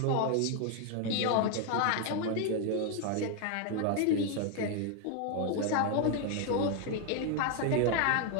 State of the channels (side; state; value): both; different; correlation 0.01